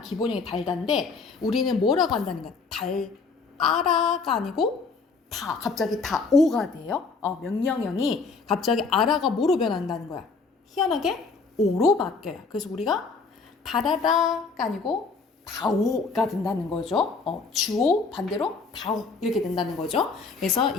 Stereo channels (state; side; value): quieter; right; 4.5 dB